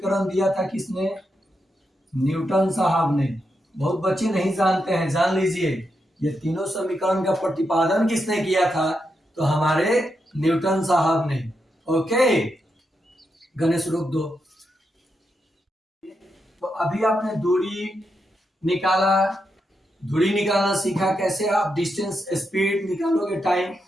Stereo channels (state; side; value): normal; both; correlation 0.84